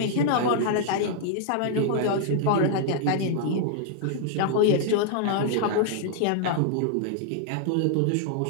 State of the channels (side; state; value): both; different; correlation -0.01